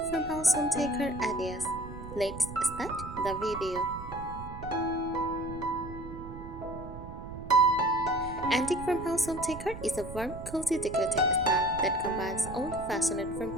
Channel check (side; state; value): right; noise; rumble, 11 dB below the sound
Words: farmhouse home decor ideas. Let's start the video. Antique farmhouse home decor is a warm, cozy decorating style that combines old-fashioned